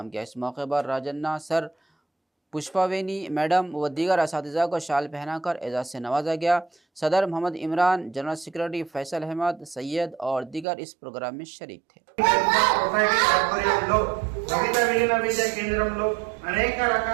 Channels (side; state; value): left; drops out; at 10.7 s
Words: किया। इस मौके पर राजन्ना सर पुष्पावेनी मैडम व दीगर असातिज़ा को शाल पहनाकर एजाज़ से नवाजा गया। सदर मोहम्मद इमरान, जनरल सेक्रेटरी फैसल अहमद, सैयद और दीगर इस प्रोग्राम में शरीक थे। అనేక